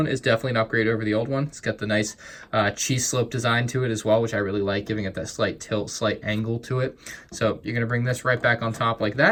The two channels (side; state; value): both; identical; correlation 1.00